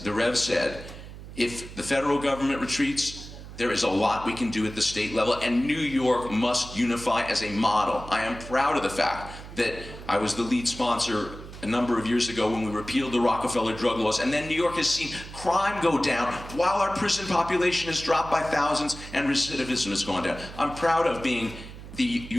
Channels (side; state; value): right; noise; hum, 14 dB below the sound